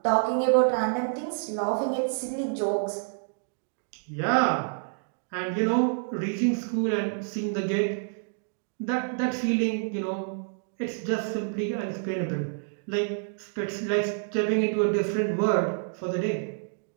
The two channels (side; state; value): left; silent; digital silence